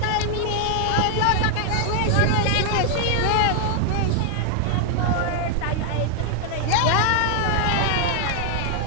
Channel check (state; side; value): different; both; correlation 0.00